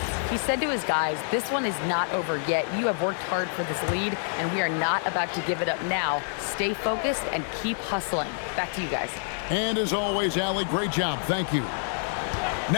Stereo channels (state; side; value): silent; right; 60 dB below the other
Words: He said to his guys, this one is not over yet. You have worked hard for this lead, and we are not about to give it up now. Stay focused and keep hustling. Back to you guys. And as always, Allie, great job. Thank you.